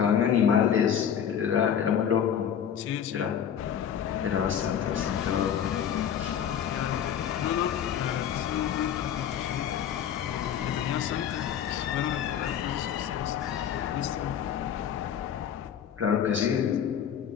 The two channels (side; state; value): right; quieter; 8.8 dB